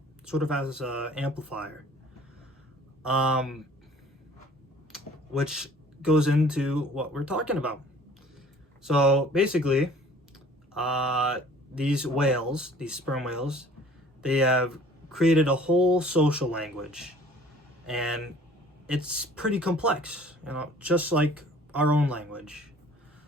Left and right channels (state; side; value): normal; both; correlation 0.51